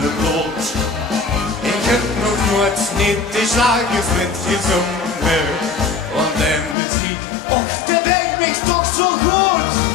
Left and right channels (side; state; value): right; drops out; at 6.8 s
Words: de bloed. Ik heb nog nooit niet de slagervriend gezongen. Want de muziek, och, dat denkt me toch zo goed.